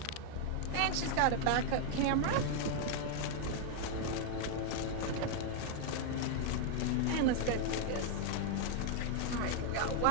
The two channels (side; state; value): both; different; correlation 0.00